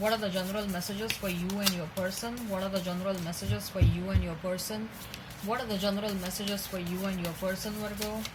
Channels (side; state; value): both; identical; correlation 1.00